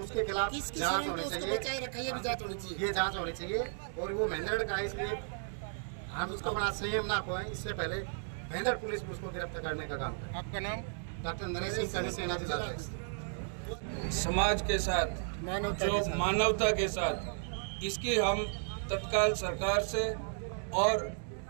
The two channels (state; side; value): silent; left; digital silence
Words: उसके खिलाफ जांच होनी चाहिए। ये जांच होनी चाहिए। और वो महेंद्रगढ़ का है, इसलिए हम उसको बड़ा संयम ना खोएं। इससे पहले महेंद्र पुलिस उसको गिरफ्तार करने का काम करें। आपका नाम? डॉक्टर नरेश सिंह, करनी सेना जिलाध्यक्ष। समाज के साथ, जो मानवता के साथ, इसकी हम तत्काल सरकार से और